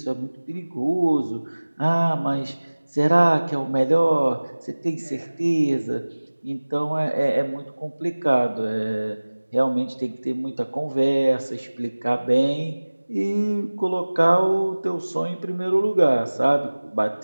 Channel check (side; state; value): both; inverted; correlation -1.00